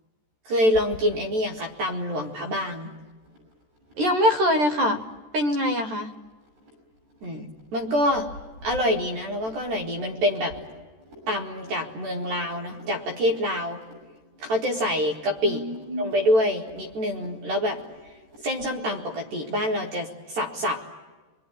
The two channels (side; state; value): left; late; 14 ms